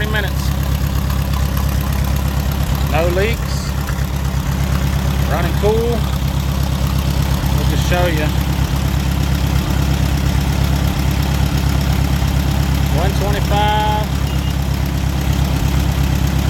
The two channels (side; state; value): both; identical; correlation 1.00